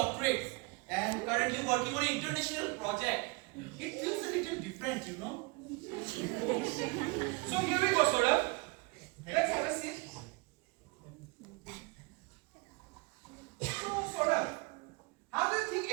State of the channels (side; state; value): left; quieter; 26.7 dB